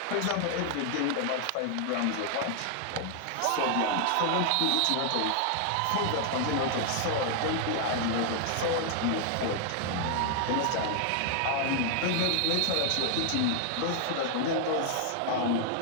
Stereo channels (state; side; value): different; both; correlation 0.00